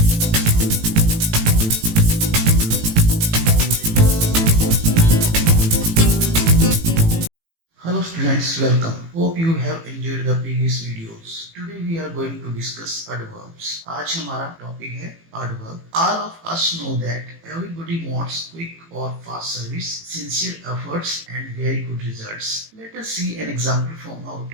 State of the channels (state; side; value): late; left; 18 ms